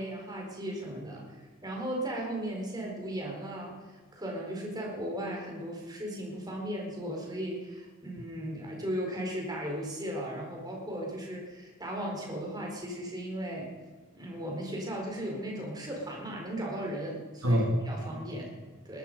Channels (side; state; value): both; normal; correlation 0.52